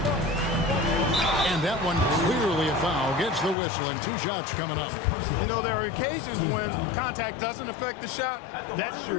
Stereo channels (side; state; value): right; drops out; at 3.6 s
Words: And that one clearly a foul. Gets the whistle and 2 shots coming up. You know, there are occasions when contact doesn't affect the shot. That